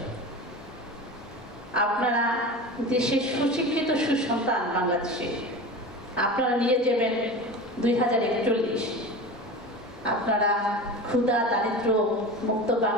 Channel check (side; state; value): both; normal; correlation 0.31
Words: আপনারা দেশের সুশিক্ষিত সুসন্তান বাংলাদেশে আপনারা নিয়ে যাবেন 2041। আপনারা ক্ষুধা দারিদ্র মুক্ত